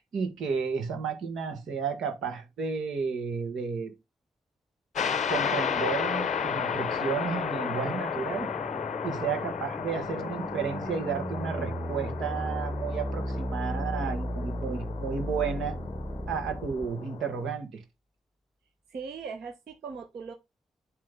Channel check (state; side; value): normal; both; correlation 0.51